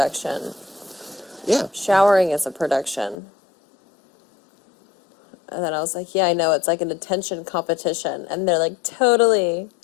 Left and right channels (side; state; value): right; drops out; at 3.2 s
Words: Yeah. Showering is a production. And then I was like, yeah, I know, it's like an attention competition. And they're like, totally.